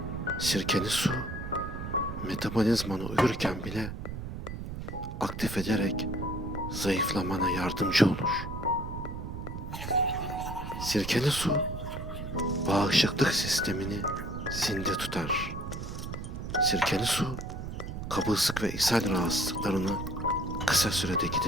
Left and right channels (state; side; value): noise; right; rumble, 7 dB below the sound